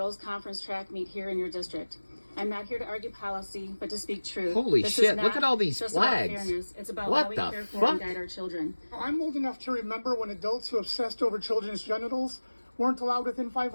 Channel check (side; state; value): both; inverted; correlation -1.00